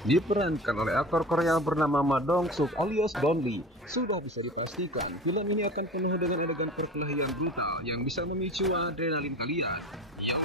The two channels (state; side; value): normal; both; correlation 0.35